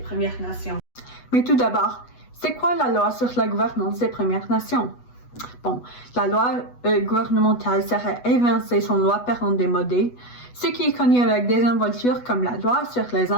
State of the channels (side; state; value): right; late; 8.2 ms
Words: Nations. Mais tout d'abord, c'est quoi la loi sur la gouvernance des Premières Nations? Bon, la loi gouvernementale serait évincée son loi parent démodée, ce qui est connu avec désinvolture comme la loi sur les